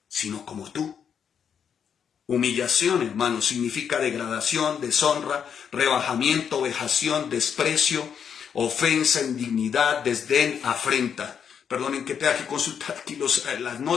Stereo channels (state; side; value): quieter; right; 7.6 dB